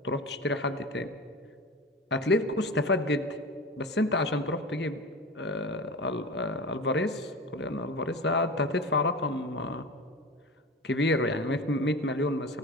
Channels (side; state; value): both; normal; correlation 0.30